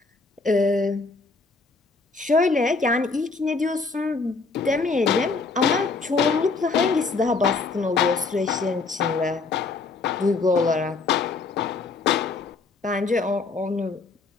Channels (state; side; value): quieter; right; 4.1 dB